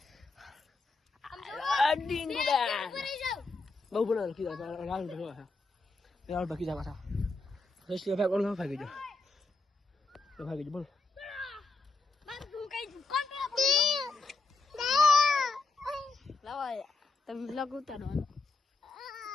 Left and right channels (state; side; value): quieter; right; 3.6 dB